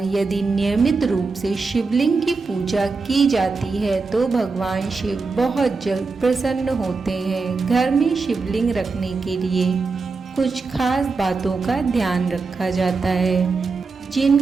यदि नियमित रूप से शिवलिंग की पूजा की जाती है तो भगवान शिव बहुत जल्द प्रसन्न होते हैं। घर में शिवलिंग रखने के लिए कुछ खास बातों का ध्यान रखा जाता है,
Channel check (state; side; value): quieter; left; 4.3 dB